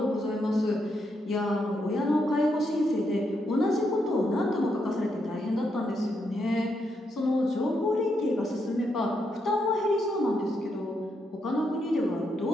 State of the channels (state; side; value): normal; both; correlation 0.80